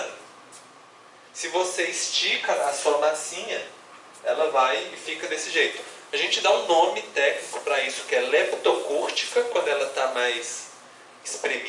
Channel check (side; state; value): both; identical; correlation 1.00